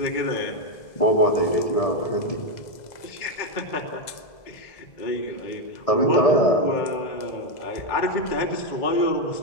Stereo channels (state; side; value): late; right; 2.0 ms